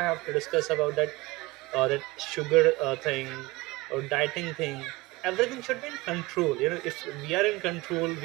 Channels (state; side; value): quieter; left; 21.7 dB